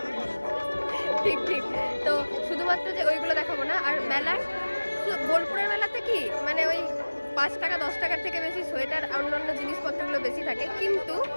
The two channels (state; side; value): inverted; both; correlation -1.00